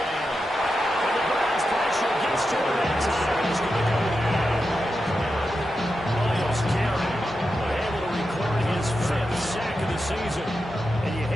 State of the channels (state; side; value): normal; both; correlation 0.89